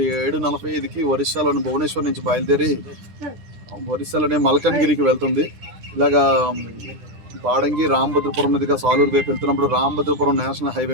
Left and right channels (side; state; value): left; late; 10 ms